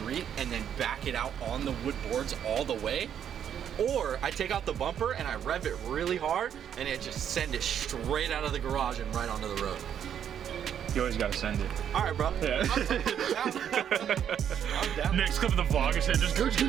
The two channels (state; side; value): quieter; left; 9.1 dB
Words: and then back it out on the wood boards all the way. Or I take out the bumper and I rev it really hard and it just send it straight out of the garage and right onto the road. You always gotta send it. All right, bro. Yeah. I'm down. Next clip of the vlog is just gooch.